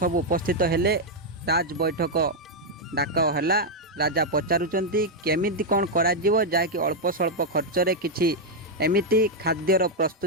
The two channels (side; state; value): both; normal; correlation -0.01